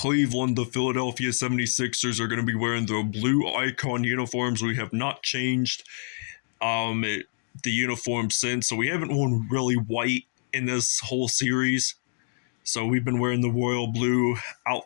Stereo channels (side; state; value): right; silent; 61 dB below the other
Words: the Philadelphia 76ers are going to be wearing their blue icon uniforms. We have not changed the uniform since, so we haven't worn really white in this whole series. So we've been wearing the royal blue